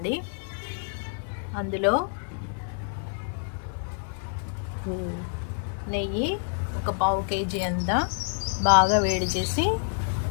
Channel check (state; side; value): silent; right; 60 dB below the other